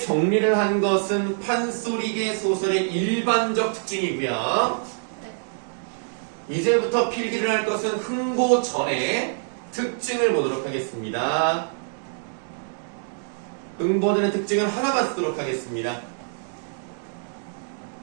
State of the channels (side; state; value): left; silent; digital silence